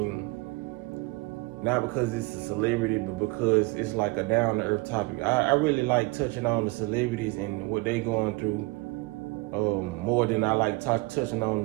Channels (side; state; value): left; quieter; 24.0 dB